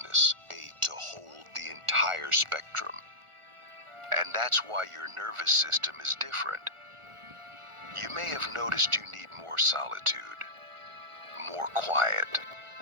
to hold the entire spectrum. And that's why your nervous system is different. You may have noticed you need more solitude, more quiet,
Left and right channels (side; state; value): left; late; 1.4 ms